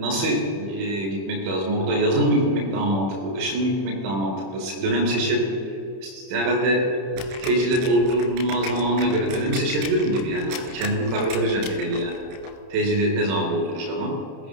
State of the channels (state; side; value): late; left; 31 ms